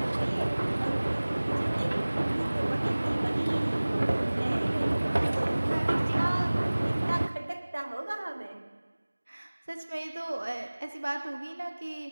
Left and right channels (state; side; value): inverted; both; correlation -1.00